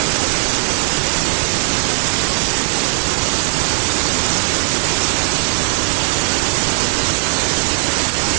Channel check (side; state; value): left; silent; digital silence